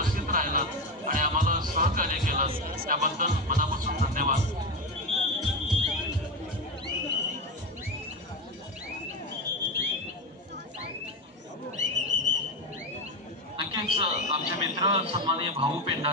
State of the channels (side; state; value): both; normal; correlation 0.16